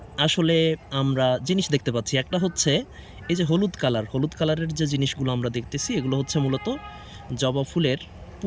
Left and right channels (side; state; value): both; identical; correlation 1.00